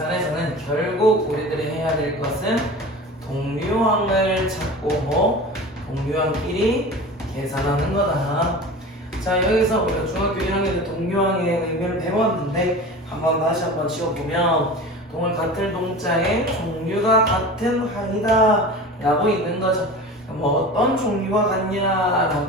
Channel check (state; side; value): normal; both; correlation 0.35